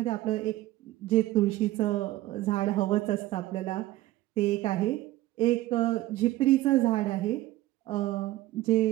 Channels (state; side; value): quieter; left; 16.3 dB